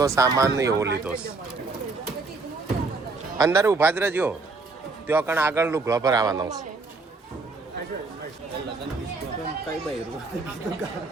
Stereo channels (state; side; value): quieter; left; 3.7 dB